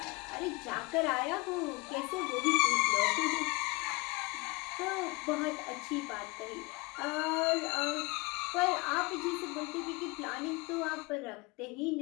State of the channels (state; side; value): quieter; right; 26.0 dB